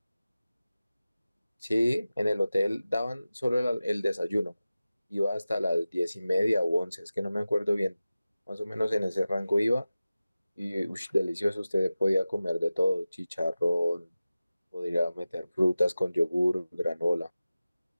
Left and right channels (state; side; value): inverted; both; correlation -0.96